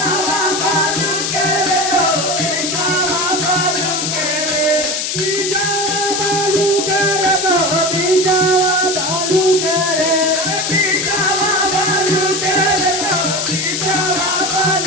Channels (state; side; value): noise; left; hiss, 1 dB below the sound